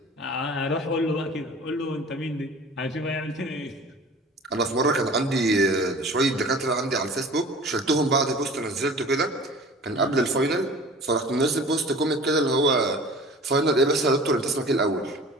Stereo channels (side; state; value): both; normal; correlation 0.42